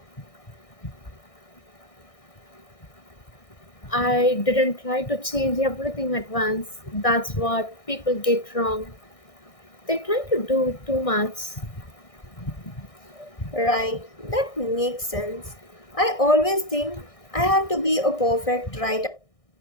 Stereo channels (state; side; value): late; right; 1.6 ms